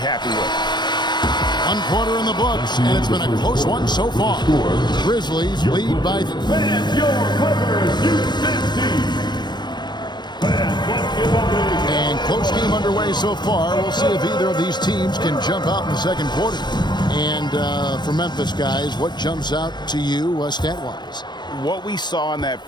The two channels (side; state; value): right; late; 0.21 ms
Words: with. 1 quarter in the books, and it's been a close one so far. Grizzlies lead by... Fans, your Clippers, Houston team. Fans, let's give a big... And close game underway so far. We'll see if either of these teams can jump out in the second quarter. And for Memphis, guys, what jumps out to you stat-wise? What we saw in that